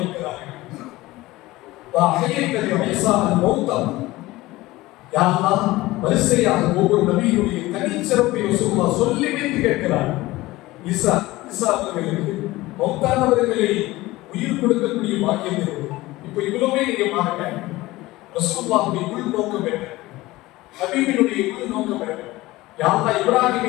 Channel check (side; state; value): right; quieter; 18.8 dB